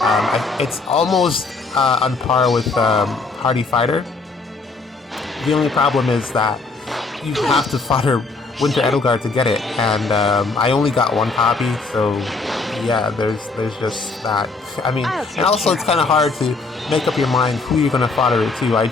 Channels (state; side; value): quieter; right; 3.9 dB